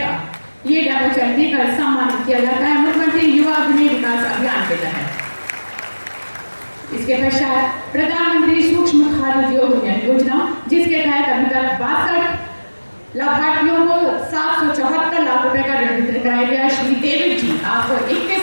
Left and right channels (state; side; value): inverted; both; correlation -1.00